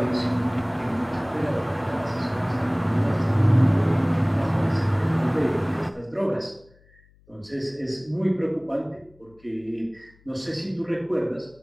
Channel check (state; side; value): noise; left; hum, 30 dB below the sound